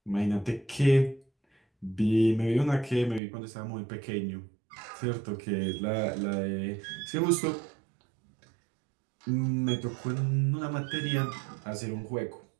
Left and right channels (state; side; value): drops out; left; at 3.2 s